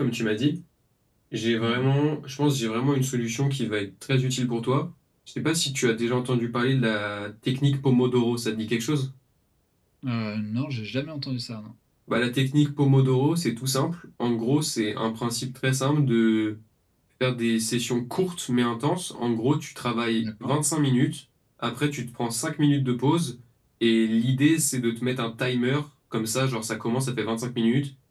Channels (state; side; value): identical; both; correlation 1.00